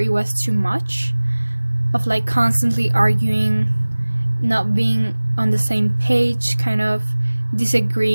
was too much of like constantly arguing, not being on the same page, kind of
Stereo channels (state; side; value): inverted; both; correlation -1.00